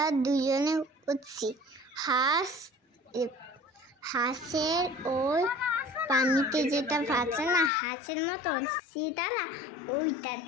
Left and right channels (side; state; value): right; drops out; at 7.7 s